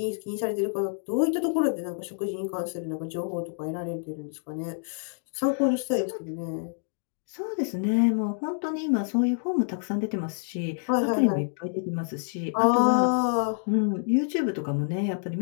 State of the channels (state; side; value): silent; right; digital silence